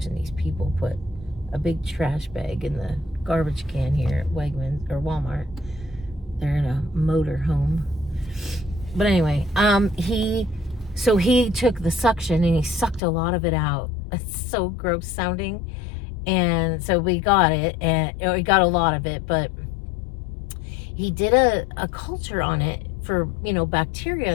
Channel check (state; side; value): drops out; right; at 13.0 s